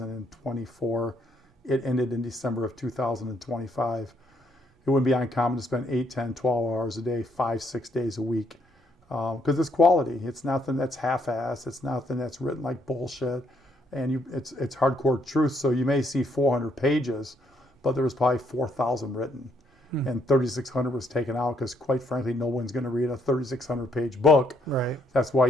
It ended in December of 2025. It wouldn't be uncommon to spend 8, 10, 12 hours a day, 5, 6 days a week. Because it's quality. It's nothing that's half-assed. It's nothing that's written like bullshit. And it's hardcore truth. So you may see 400 pages, but there was probably 4,000 written. And 3,600 was taken out because, quite frankly, no one's going to read a 3,600-page book. Right. That's why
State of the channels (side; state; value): both; normal; correlation 0.71